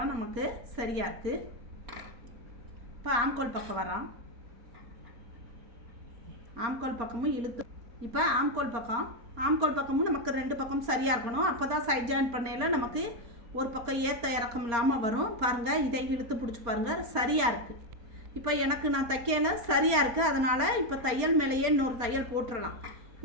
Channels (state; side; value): late; left; 4.3 ms